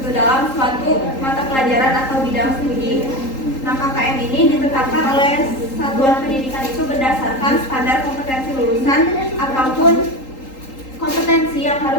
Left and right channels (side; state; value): right; late; 3.8 ms